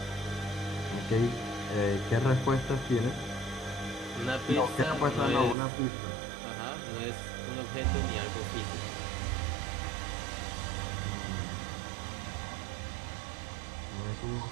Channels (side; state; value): left; drops out; at 5.6 s